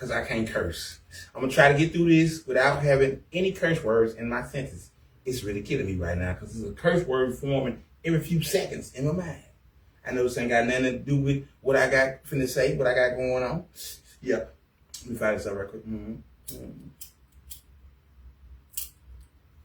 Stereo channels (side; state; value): both; identical; correlation 1.00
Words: I can't curse. I'm going to try to get through this without having any curse words in my sentence. It's really killing me right now because there's a curse word forming every few seconds in my mind. I know this ain't got nothing to do with what I got finna say, what I got going on. Yeah. Let me fire this up real quick.